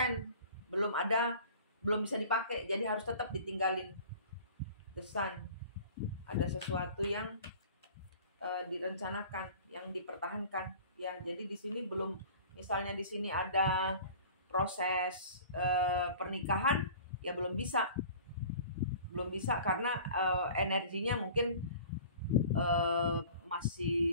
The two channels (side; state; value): both; inverted; correlation -0.44